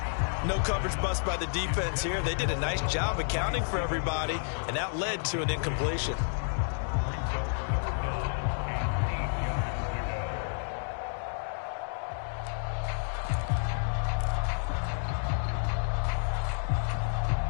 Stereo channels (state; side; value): silent; right; digital silence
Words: No coverage bust by the defense here. They did a nice job accounting for everybody, and that led to an incompletion.